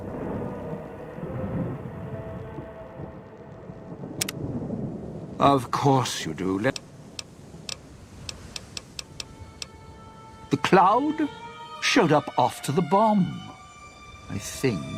Of course you do. The cloud showed up after the bomb, I think.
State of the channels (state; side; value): identical; both; correlation 1.00